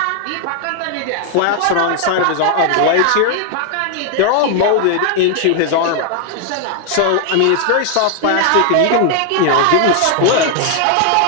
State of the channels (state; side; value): different; both; correlation 0.00